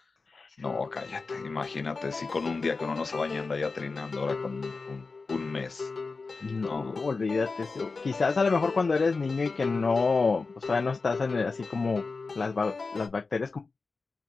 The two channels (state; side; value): quieter; right; 4.1 dB